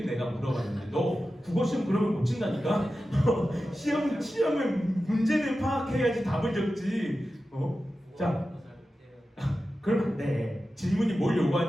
내가 물어봤는데 너 국어시험 그러면 못 친다니까? 시험에 문제를 파악해야지 답을 적지. 자, 그러면 안 돼. 질문이 뭘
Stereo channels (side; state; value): both; normal; correlation 0.93